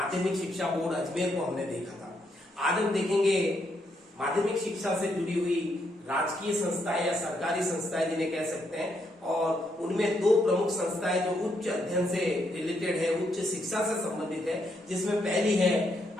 शिक्षा बोर्ड अजमेर को हमने देखा था। आज हम देखेंगे माध्यमिक शिक्षा से जुड़ी हुई राजकीय संस्थाएं या सरकारी संस्थाएं जिन्हें कह सकते हैं, और उनमें दो प्रमुख संस्थाएं जो उच्च अध्ययन से रिलेटेड है, उच्च शिक्षा से संबंधित है, जिसमें पहली है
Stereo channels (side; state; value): both; normal; correlation 0.77